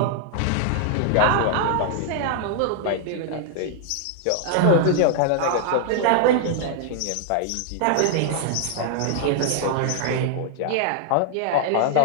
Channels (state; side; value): different; both; correlation -0.01